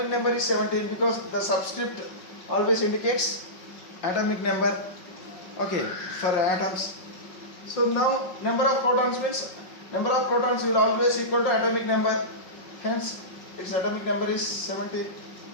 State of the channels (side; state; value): right; late; 5.4 ms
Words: number is 17 because the subscript always indicates atomic number. Okay, for atoms. So now number of protons means number of protons will always equal to atomic number. Hence its atomic number is 17.